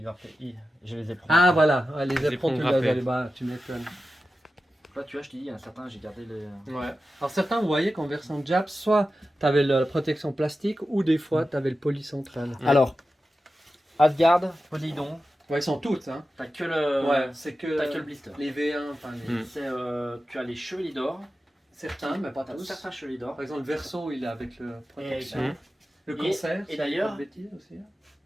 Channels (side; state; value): both; normal; correlation 0.93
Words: grappé. Je les ai pris. Ah voilà, ouais, les Les éperons, tu ponts grappés. les bas, tu m'étonnes. Là, tu vois, je t'ai dit, il y en a certains, j'ai gardé les. Ouais. Alors certains, vous voyez qu'en version Jap, soit tu avais la protection plastique ou des fois tu avais le poli central. Ouais. Alors, Asgard, Poseidon, Ouais, ils sont toutes, hein. t'as que le. Ouais, c'est que, T'as que le blister. les V1, enfin les... Mm. C'est, tu as les chevaliers d'or. certains, mais pas T'as tous. certains chevaliers d'or. Par exemple, le Verso, il est avec le protection. Mm. Le Et- concert, et si d'ailleurs- je dis pas de bêtises aussi.